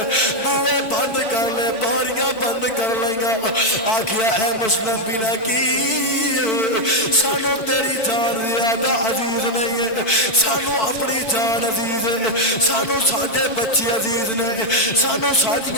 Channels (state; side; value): late; right; 4.5 ms